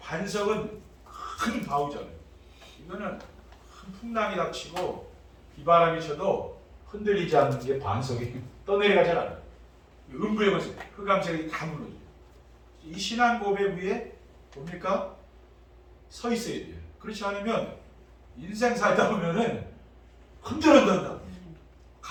큰 바우잖아요. 이거는 큰 풍랑이 닥치고 비바람이 쳐도 흔들리지 않는 게 반석이 떠내려가지 않아요. 음부의 권세, 흑암색이 다 무너져요. 이 신앙 고백 위에 뭡니까? 서 있어야 돼요. 그렇지 않으면 인생 살다 보면은 흔들린다.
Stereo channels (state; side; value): identical; both; correlation 1.00